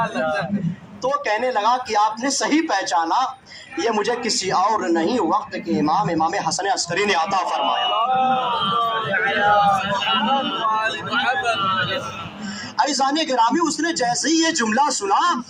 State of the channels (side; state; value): both; identical; correlation 1.00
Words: تو کہنے لگا کہ آپ نے صحیح پہچانا، یہ مجھے کسی اور نہیں وقت کے امام حسن عسکری نے عطا فرمایا۔ عزیزان گرامی اس نے جیسے ہی یہ جملہ سنا